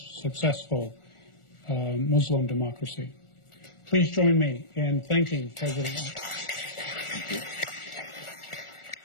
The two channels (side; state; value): right; late; 1.4 ms